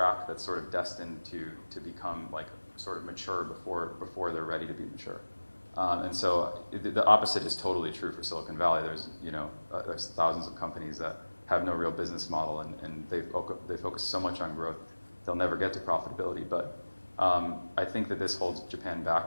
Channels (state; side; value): inverted; both; correlation -1.00